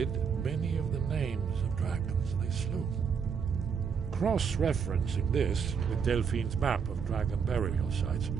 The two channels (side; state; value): left; quieter; 6.5 dB